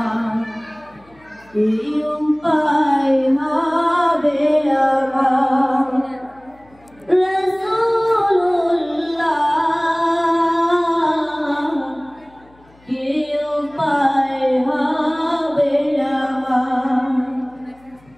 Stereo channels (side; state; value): left; noise; hum, 29 dB below the sound